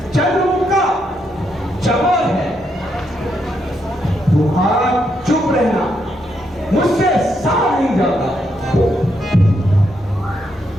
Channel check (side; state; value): both; normal; correlation 0.79